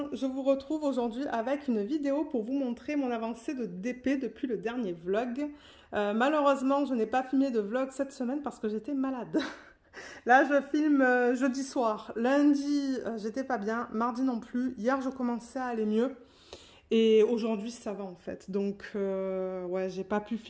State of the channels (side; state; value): both; identical; correlation 1.00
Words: je vous retrouve aujourd'hui avec une vidéo pour vous montrer mon avancée de DP depuis le dernier vlog. Malheureusement, je n'ai pas filmé de vlog cette semaine parce que j'étais malade. Là, je filme jeudi soir. Lundi, j'étais pas bien. Mardi non plus. Hier, je commençais à aller mieux. Et aujourd'hui, ça va en fait. Donc, ouais, j'ai pas pu